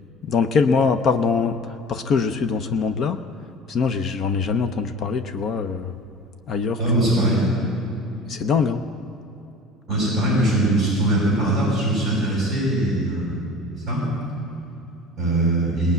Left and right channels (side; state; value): both; normal; correlation 0.41